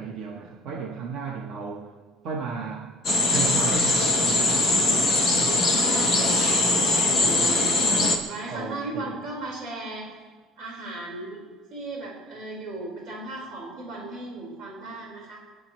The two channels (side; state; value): both; normal; correlation 0.49